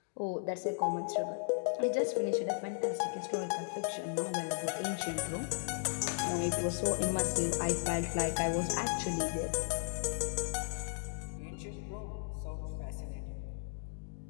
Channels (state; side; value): silent; right; digital silence